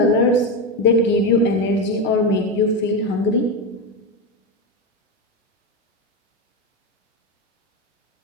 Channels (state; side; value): normal; both; correlation 0.14